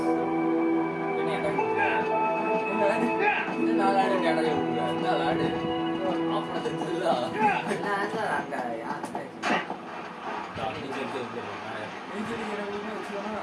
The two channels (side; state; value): both; identical; correlation 1.00